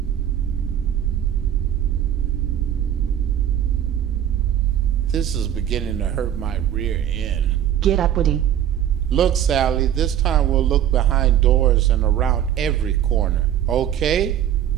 This is beginning to hurt my rear end. Get up, Woody. Look, Sally, this time we'll look behind doors and around every corner. Okay?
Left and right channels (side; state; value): left; quieter; 10.5 dB